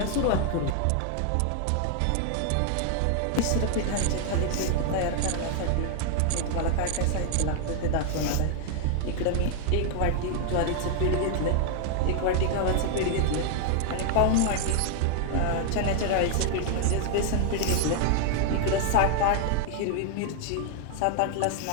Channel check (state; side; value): different; both; correlation 0.00